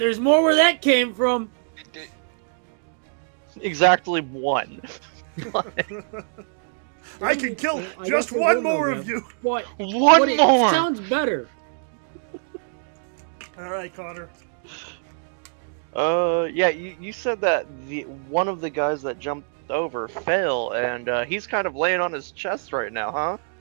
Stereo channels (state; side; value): silent; left; digital silence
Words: more where that came from. Exactly one. I can kill I just guess there one will more no of you. What? One It more! sounds better. All right, Connor. Yeah, you said that one of the guys that jumped over fell, and he's kind of laying on his chest right now, huh?